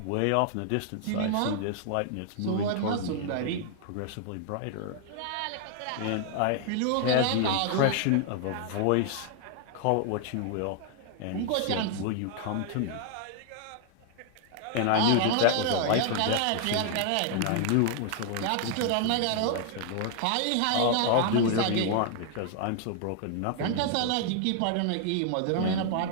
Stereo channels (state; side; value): different; both; correlation 0.00